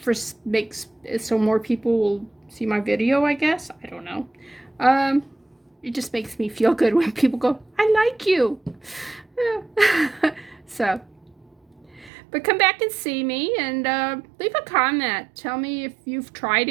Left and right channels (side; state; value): left; drops out; at 12.1 s